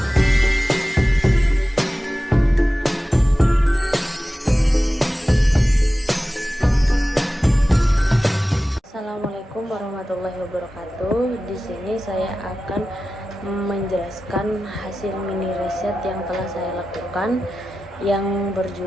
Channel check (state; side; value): normal; both; correlation 0.95